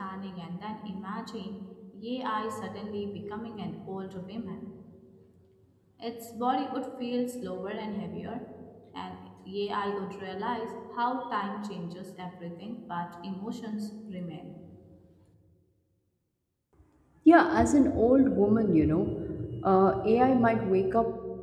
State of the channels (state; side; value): identical; both; correlation 1.00